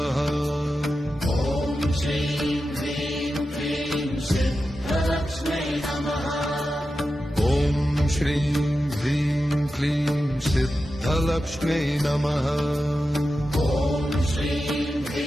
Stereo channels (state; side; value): normal; both; correlation 0.91